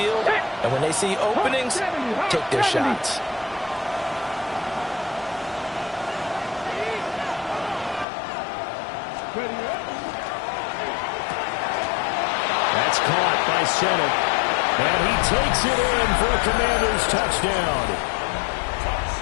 And when they see openings, take their shots. That's caught by Sennett. And he takes it in for a Commanders touchdown.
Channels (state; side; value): drops out; right; at 8.1 s